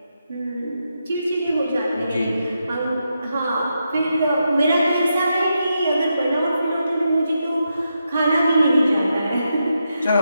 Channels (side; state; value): both; inverted; correlation -0.84